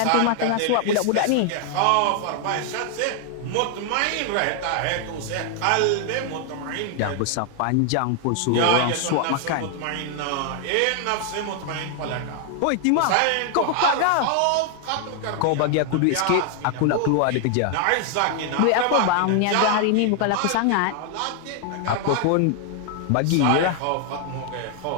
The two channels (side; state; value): both; different; correlation 0.00